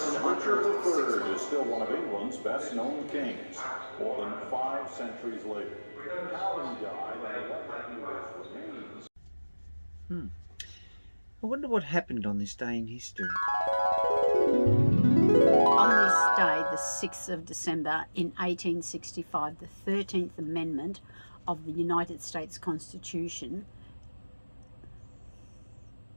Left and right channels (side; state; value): both; inverted; correlation -1.00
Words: Richard unearthed. III is still one of England's best-known kings, more than 5 centuries later. How he died and what he was remains. I wonder what happened on this day in history. On this day, the 6th of December in 1865, the 13th Amendment of the United States Constitution